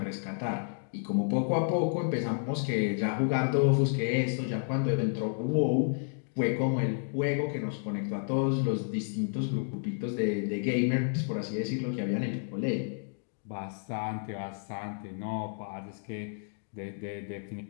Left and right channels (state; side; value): silent; right; digital silence